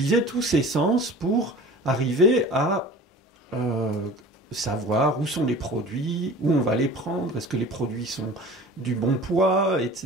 tous ses sens pour arriver à savoir où sont les produits, où on va les prendre, est-ce que les produits sont du bon poids,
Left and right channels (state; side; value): normal; both; correlation 0.41